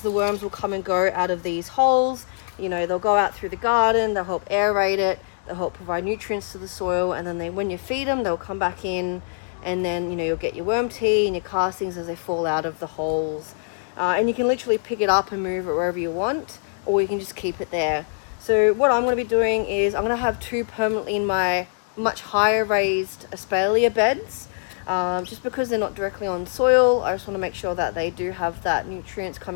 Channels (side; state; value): right; silent; 63 dB below the other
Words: the worms will come and go out of these holes. They'll go out through the garden, they'll help aerate it, they'll help provide nutrients to the soil, and then when you feed them, they'll come back in, and then you'll get your worm tea and your castings as they fall out of the holes. And you can literally pick it up and move it wherever you want, or you can just keep it there. So what I'm going to be doing is I'm going to have two permanently in my much higher raised espalier beds, just because they're not directly on soil. I just want to make sure that they do have that nutrients